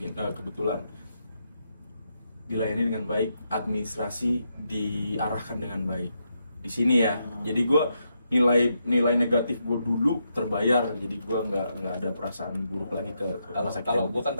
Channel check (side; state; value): both; inverted; correlation -0.81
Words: kebetulan dilayani dengan baik, administrasi diarahkan dengan baik. Di sini ya. Jadi gue nilai negatif gue dulu terbayar, jadi gue nggak ada perasaan buruk lagi ke rumah sakit. Kalau gue kan